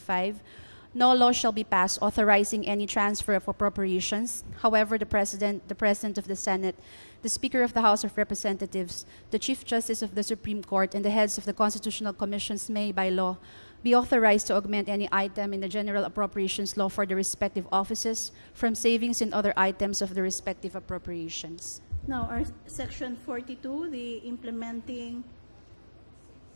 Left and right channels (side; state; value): both; inverted; correlation -1.00